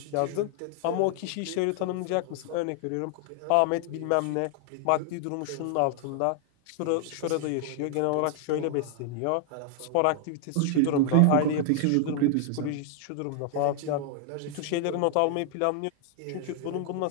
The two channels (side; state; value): both; different; correlation 0.00